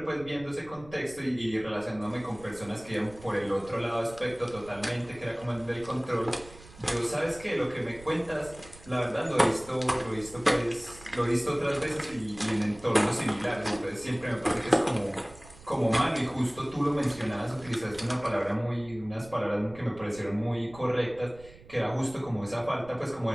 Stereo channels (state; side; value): noise; right; rumble, 20 dB below the sound